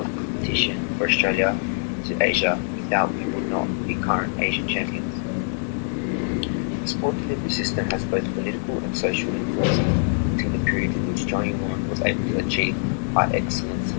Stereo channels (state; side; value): silent; right; digital silence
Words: competition for Australia to Asia, without we would not be current Asian champions. The sport delivery system has both political and social influence until the period in which Johnny Warren was able to achieve high excellence